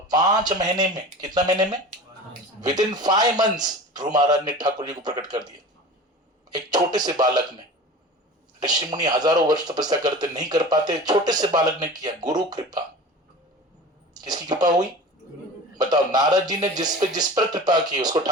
5 महीने में, कितना महीने में? विद इन 5 months ध्रुव महाराज ने ठाकुर जी को प्रकट कर दिया। एक छोटे से बालक ने, ऋषि मुनि हजारों वर्ष तपस्या करते नहीं कर पाते, छोटे से बालक ने किया। गुरु कृपा, किसकी कृपा हुई? बताओ, नारद जी ने जिस पर कृपा की उसको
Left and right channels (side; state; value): both; normal; correlation 0.36